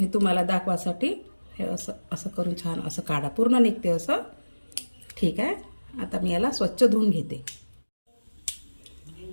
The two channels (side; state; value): both; inverted; correlation -1.00